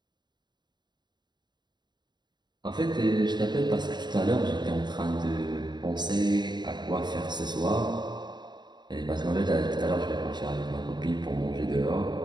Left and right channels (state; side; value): late; left; 0.21 ms